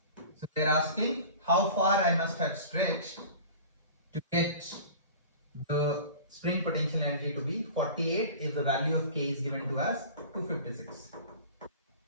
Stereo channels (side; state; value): both; inverted; correlation -0.39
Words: So they are asking how far I must have stretched to get the spring potential energy to be 48 if the value of K is given to us 256.